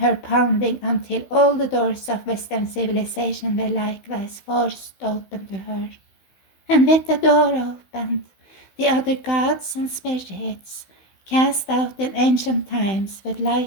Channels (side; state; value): right; late; 16 ms